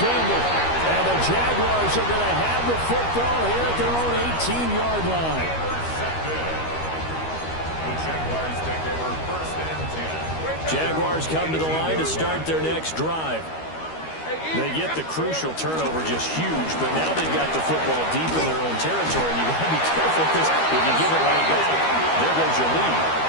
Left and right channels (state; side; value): late; right; 13 ms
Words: And the Jaguars are going to have the football here at their own 18-yard line. The Jaguars take over first and 10. Jaguars come to the line to start their next drive. They get the crucial turnover just huge, but now they've got the football deep in their own territory, and you've got to be careful because if you give it right back, there goes your lead.